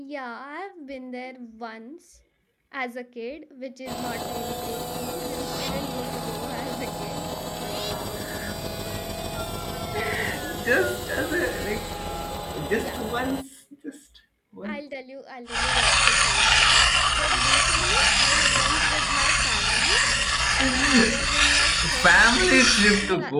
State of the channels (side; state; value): both; identical; correlation 1.00